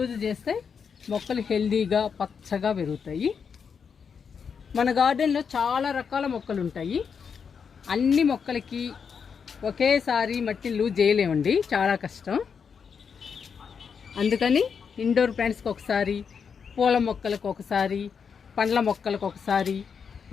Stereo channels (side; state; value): right; quieter; 6.4 dB